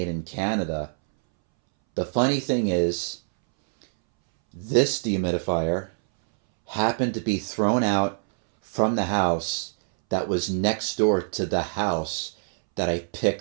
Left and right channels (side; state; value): left; silent; 62 dB below the other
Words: in Canada, the funny thing is, this dehumidifier happened to be thrown out from the house that was next door to the house that I